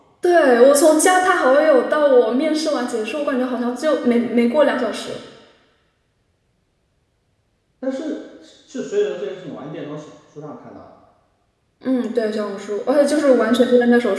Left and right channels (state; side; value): identical; both; correlation 1.00